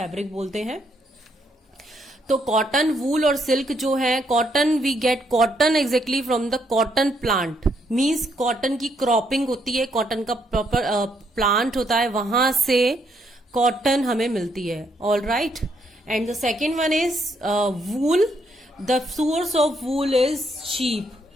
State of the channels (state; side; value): normal; both; correlation 0.74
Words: बोलते हैं. तो कॉटन, वूल और सिल्क जो है, cotton we get cotton exactly from the cotton plant. Means cotton की क्रॉपिंग होती है, कॉटन का प्रॉपर प्लांट होता है, वहां से कॉटन हमें मिलती है. All right. And the second one is wool. The source of wool is sheep.